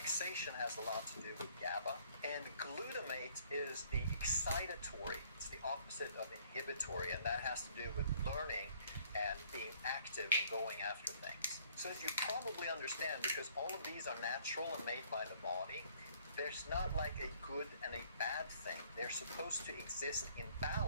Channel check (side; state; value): both; inverted; correlation -0.60